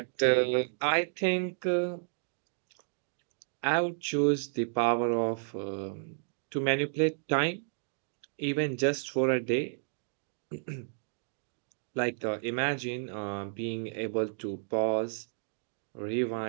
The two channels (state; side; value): silent; left; digital silence